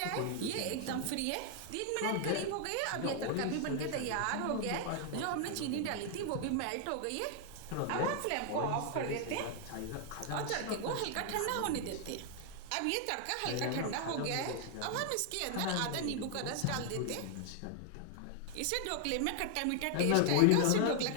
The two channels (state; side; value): different; both; correlation 0.00